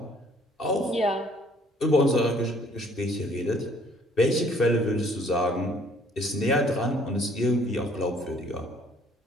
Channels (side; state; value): both; normal; correlation 0.60